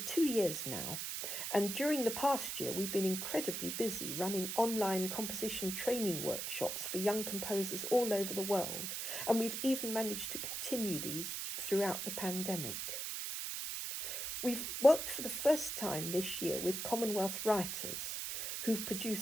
years now, and during the past year we've been incredibly busy running online composition training workshops for young composers all over the world, and we've even managed to continue these throughout the pandemic. We've worked for the first time this year with Commonwealth writers who've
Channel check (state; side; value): noise; right; hiss, 3 dB below the sound